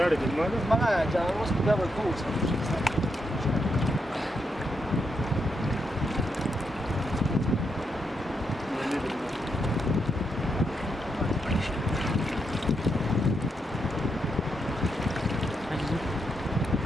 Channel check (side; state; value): both; normal; correlation 0.81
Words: الماده ما جاء وسط باب الكوس